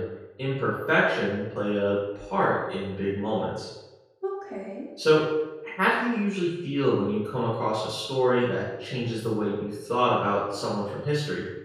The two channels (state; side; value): identical; both; correlation 1.00